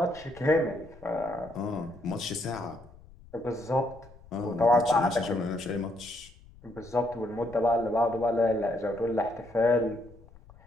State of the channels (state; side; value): noise; left; rumble, 22 dB below the sound